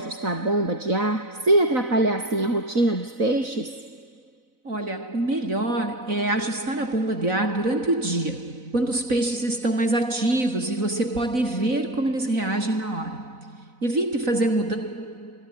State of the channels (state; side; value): late; left; 4.0 ms